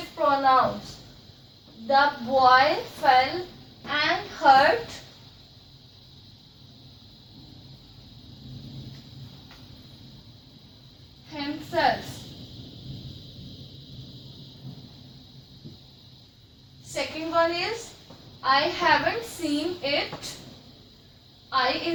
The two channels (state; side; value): identical; both; correlation 1.00